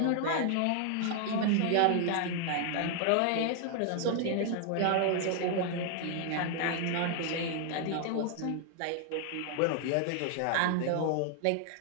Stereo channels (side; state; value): both; different; correlation 0.00